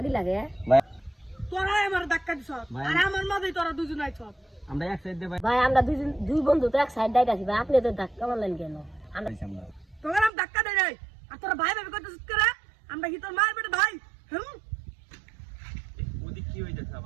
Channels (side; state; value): left; drops out; at 10.3 s